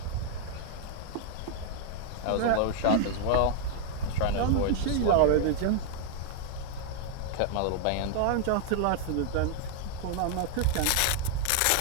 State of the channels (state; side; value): different; both; correlation 0.00